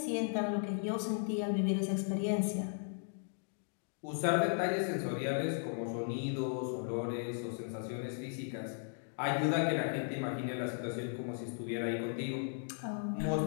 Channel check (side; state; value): right; silent; digital silence